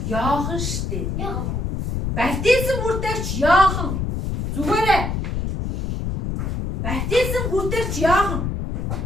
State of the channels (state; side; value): noise; left; rumble, 2 dB below the sound